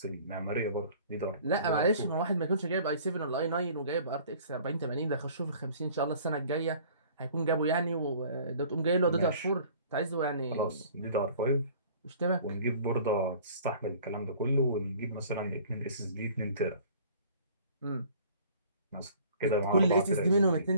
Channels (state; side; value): inverted; both; correlation -0.51